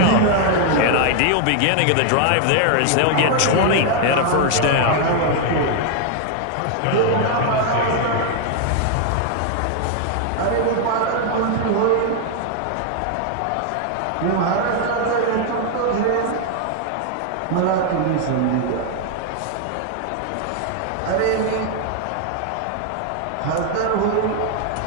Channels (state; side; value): different; both; correlation 0.00